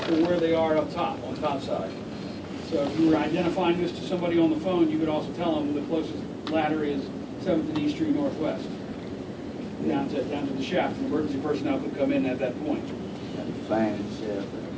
where they are up top, on top side. So if you were identifying this to somebody on the phone, you could also tell them the closest ladder is 7th and East Street Northwest, down to the shaft. An emergency personnel could come in at that point. Fan shaft.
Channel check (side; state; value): both; identical; correlation 1.00